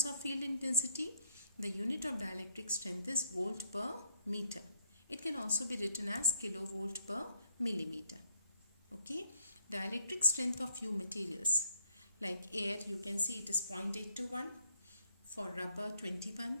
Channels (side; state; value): both; inverted; correlation -0.67